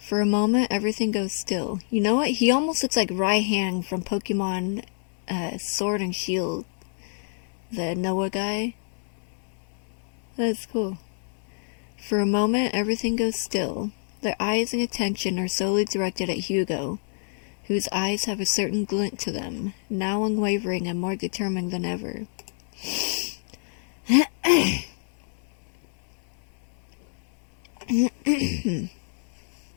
For a moment, everything goes still. You know what? He almost looks like Raihan from Pokemon Sword and Shield. The Noah guy. That's cool. For a moment, everything goes still. Their eyes and attention are solely directed at Hugo, whose eyes have a certain glint to them, now unwavering and more determined than ever.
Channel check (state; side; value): silent; right; digital silence